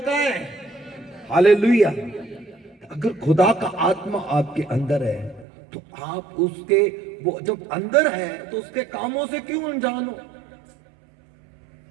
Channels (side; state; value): left; drops out; at 5.5 s